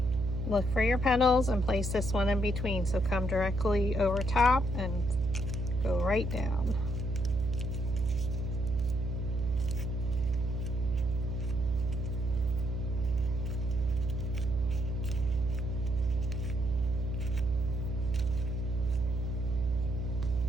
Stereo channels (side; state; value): right; noise; hum, 2 dB below the sound